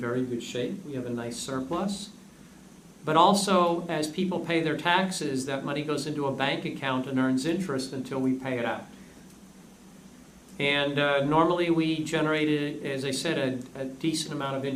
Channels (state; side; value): identical; both; correlation 1.00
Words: good shape. We have a nice surplus. But also, as people pay their taxes, that money goes into a bank account and earns interest until we pay it out. And normally we generated, as I said, a decent amount of